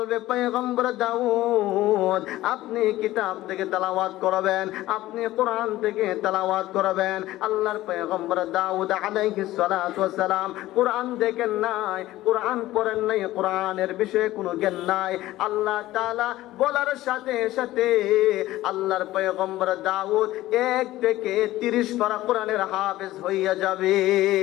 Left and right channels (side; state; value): right; quieter; 16.1 dB